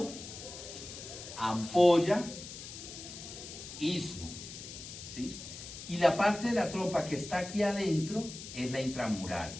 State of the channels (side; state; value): left; noise; hiss, 11 dB below the sound